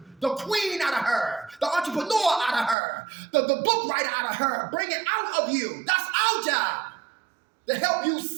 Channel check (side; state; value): left; drops out; at 2.8 s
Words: The queen out of her, the entrepreneur out of her, the book writer out of her, bring it out of you. That's our job, to help you